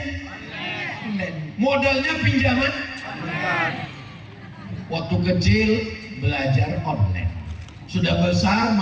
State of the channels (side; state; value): both; identical; correlation 1.00